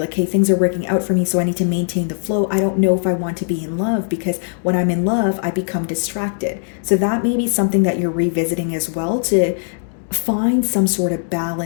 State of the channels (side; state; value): right; silent; digital silence